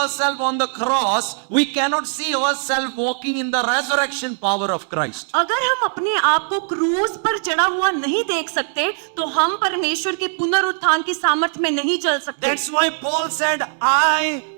on the cross, we cannot see ourselves walking in the resurrection power of Christ. अगर हम अपने आप को क्रूस पर चढ़ा हुआ नहीं देख सकते तो हम परमेश्वर के पुनरुत्थान की सामर्थ में नहीं चल सकते। That's why Paul said, I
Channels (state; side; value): silent; left; digital silence